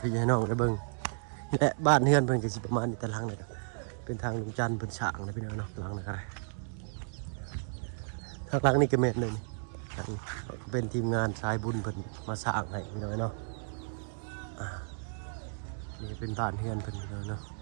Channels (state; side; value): silent; left; digital silence